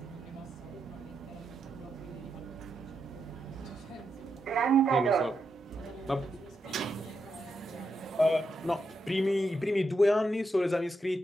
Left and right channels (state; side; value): normal; both; correlation 0.84